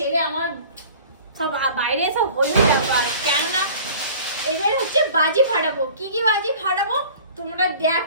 আমার সব বাইরে সব হলো ব্যাপার, কেননা এবার হচ্ছে বাজি ফাটাবো। কি কি বাজি ফাটাবো তোমরা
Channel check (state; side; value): inverted; both; correlation -0.45